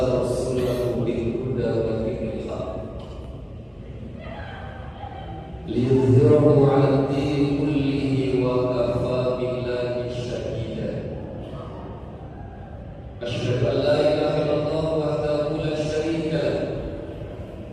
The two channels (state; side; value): identical; both; correlation 1.00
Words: rasulahu bil huda wa dinil haq liyudhhirahu 'ala ad-dini kullihi wa kafaa billahi shahida. Asyhadu an la ilaha illallah wahdahu la syarika lahu